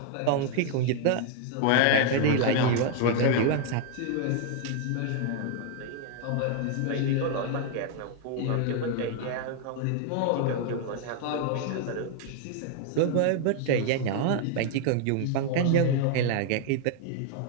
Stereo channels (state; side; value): different; both; correlation 0.00